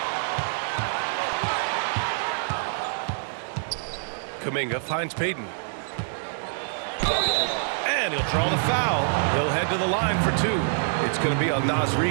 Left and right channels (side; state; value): left; silent; digital silence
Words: Kuminga finds Payton. And he'll draw the foul. He'll head to the line for 2. It's going to be on Naz